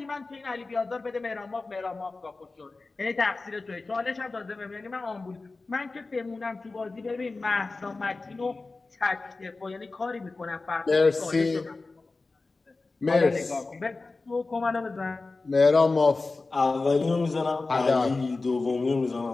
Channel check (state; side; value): quieter; right; 3.6 dB